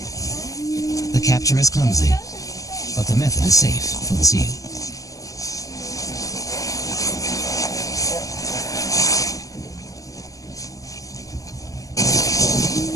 The capture is clumsy, but the method is safe for the seal.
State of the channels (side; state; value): right; late; 0.17 ms